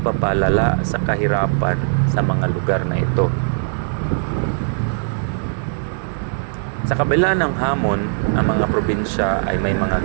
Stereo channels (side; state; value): left; silent; digital silence